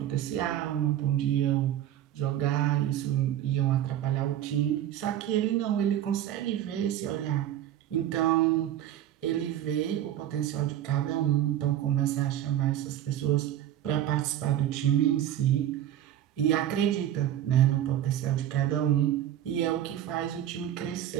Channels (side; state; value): left; quieter; 11.7 dB